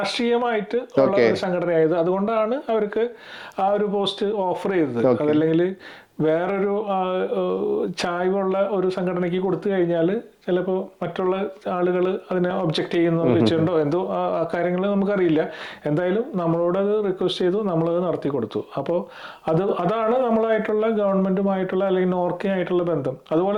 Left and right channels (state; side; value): identical; both; correlation 1.00